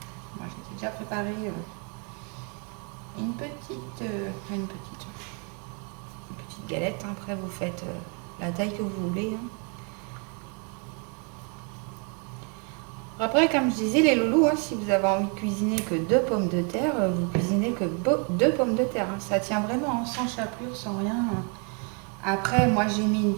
Moi j'ai déjà préparé une petite galette, hein. Après vous faites la taille que vous voulez. Hein. Après, comme je disais, les loulous, hein, si vous avez envie de cuisiner que 2 pommes de terre, vous cuisinez que 2 pommes de terre. Hein. Ça tient vraiment, hein, sans chapelure, sans rien. Hein. Après, moi j'ai mis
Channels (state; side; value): quieter; left; 36.8 dB